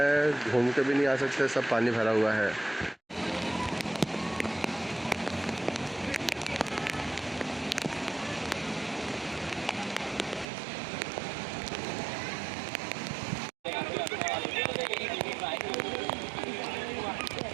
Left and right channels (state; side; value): drops out; left; at 10.5 s